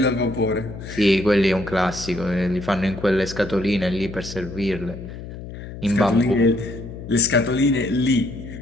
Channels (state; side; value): noise; left; hum, 11 dB below the sound